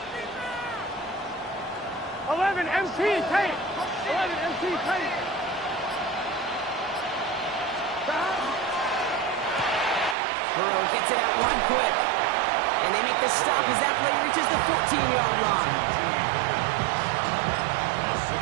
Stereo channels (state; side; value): drops out; left; at 10.2 s